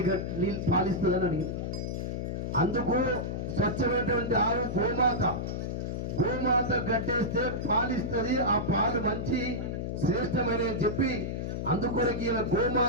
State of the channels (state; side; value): noise; left; hum, 3 dB below the sound